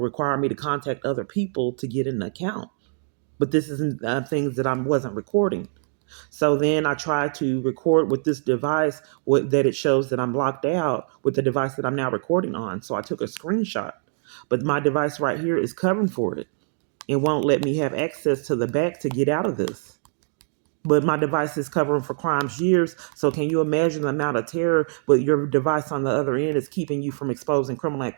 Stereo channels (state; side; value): silent; left; 63 dB below the other